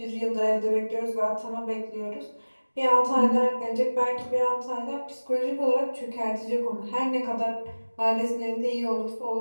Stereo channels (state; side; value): inverted; both; correlation -1.00